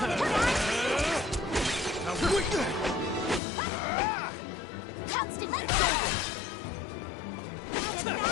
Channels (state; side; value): drops out; right; at 3.4 s